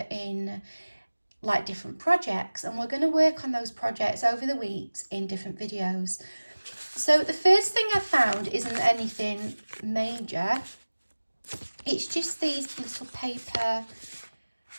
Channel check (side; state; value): both; inverted; correlation -1.00